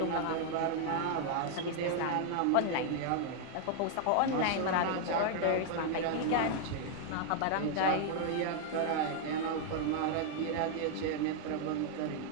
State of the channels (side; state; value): both; different; correlation 0.00